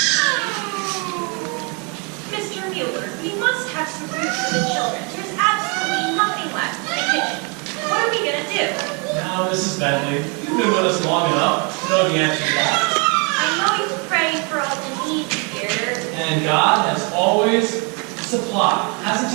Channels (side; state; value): left; quieter; 33.8 dB